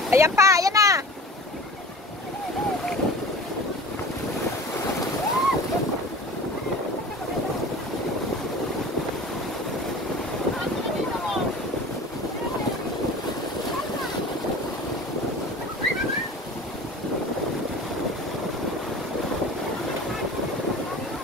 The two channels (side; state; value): both; normal; correlation 0.39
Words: Ayan pa, ayan na.